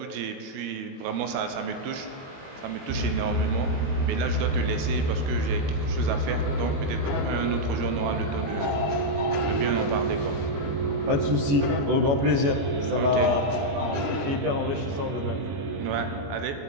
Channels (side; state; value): left; late; 21 ms